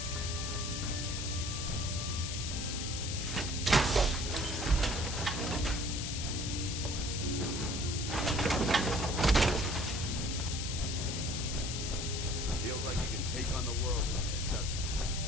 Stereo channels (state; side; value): noise; left; hiss, 4 dB below the sound